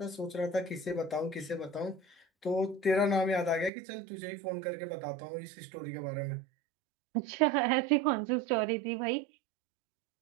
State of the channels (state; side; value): drops out; left; at 3.7 s